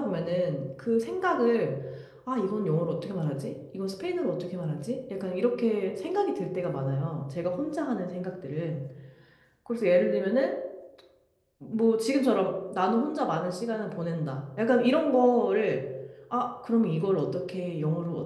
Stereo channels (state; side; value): identical; both; correlation 1.00